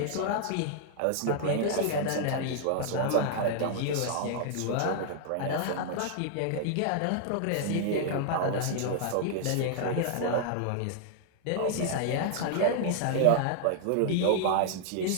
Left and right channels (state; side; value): different; both; correlation 0.00